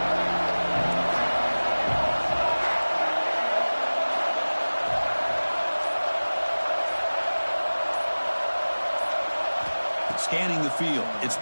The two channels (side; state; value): both; inverted; correlation -1.00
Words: Scanning the field, it's